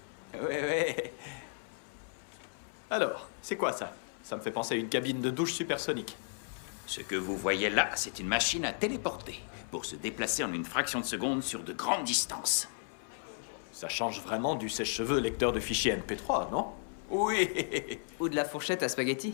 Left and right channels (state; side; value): silent; right; 55 dB below the other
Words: Oui. Alors, c'est quoi ça? Ça me fait penser à une cabine de douche supersonique. Ce que vous voyez là, c'est une machine à téléporter pour se déplacer en une fraction de seconde sur de grandes distances. Ça change vraiment du sèche-cheveux lecteur de fichiers MP3, non? Oui. Ou de la fourchette à spaghetti.